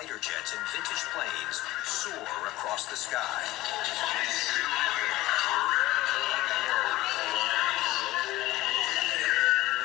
jets and vintage planes soar across the sky.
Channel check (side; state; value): right; quieter; 17.5 dB